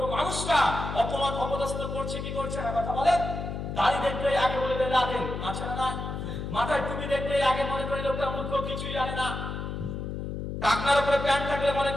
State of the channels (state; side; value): noise; left; hum, 5 dB below the sound